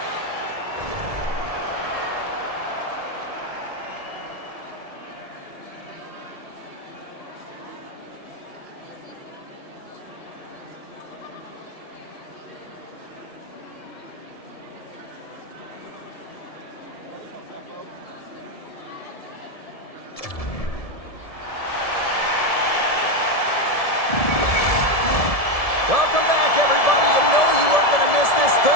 Welcome back, everybody. You know you weren't going to miss this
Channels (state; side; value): late; right; 1.7 ms